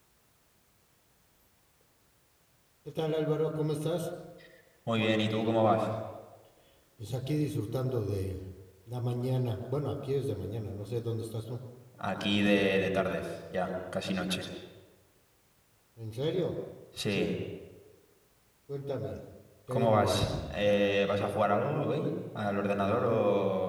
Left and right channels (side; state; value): both; identical; correlation 1.00